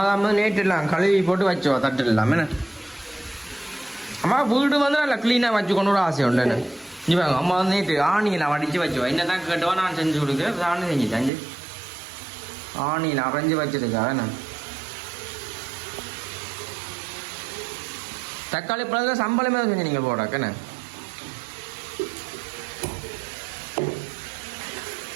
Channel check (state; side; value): drops out; left; at 11.3 s